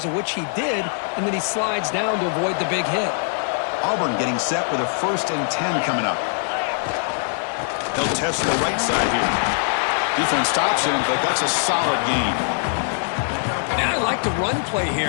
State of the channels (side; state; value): right; silent; 57 dB below the other